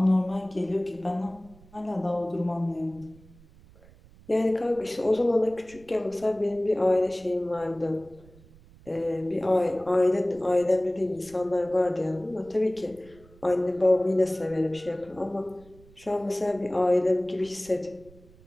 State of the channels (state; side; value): noise; right; rumble, 25 dB below the sound